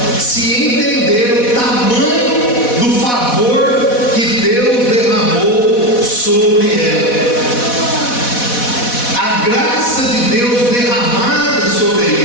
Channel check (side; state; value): right; late; 4.1 ms